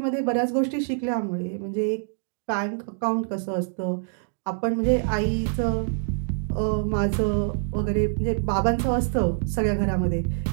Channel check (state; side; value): silent; left; 61 dB below the other